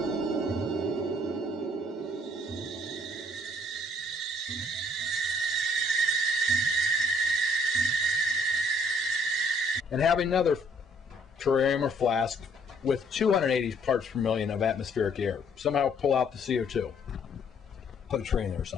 And have another terrarium or flask with 280 parts per million of atmospheric air. Somehow pull out the CO2. Put a tray in there or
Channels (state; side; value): normal; both; correlation 0.63